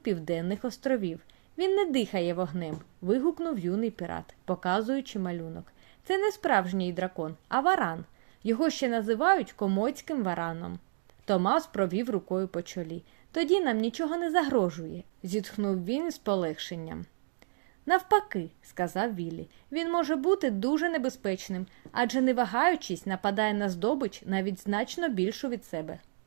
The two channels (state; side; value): silent; left; digital silence